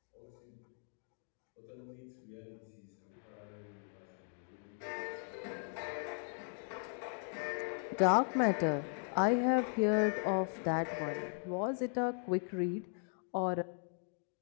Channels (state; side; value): silent; right; 52 dB below the other